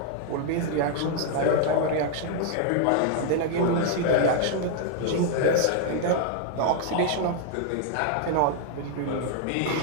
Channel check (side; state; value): both; different; correlation 0.00